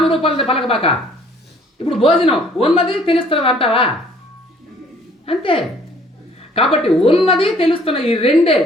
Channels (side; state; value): both; normal; correlation 0.58